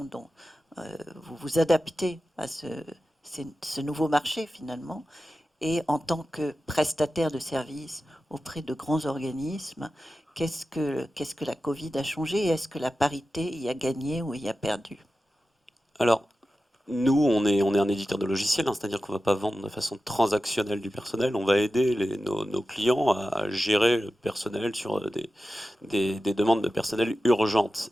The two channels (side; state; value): both; normal; correlation 0.93